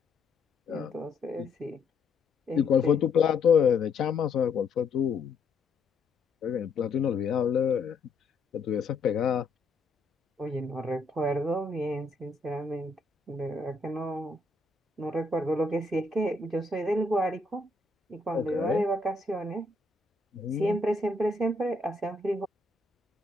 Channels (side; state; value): right; quieter; 3.7 dB